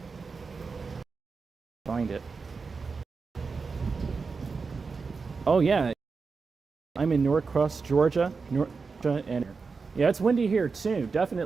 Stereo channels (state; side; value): quieter; left; 4.7 dB